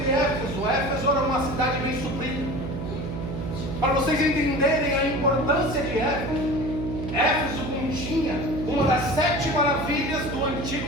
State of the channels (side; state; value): right; noise; hum, 5 dB below the sound